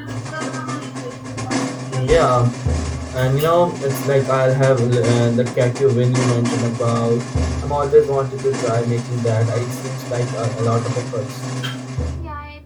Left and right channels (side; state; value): both; identical; correlation 1.00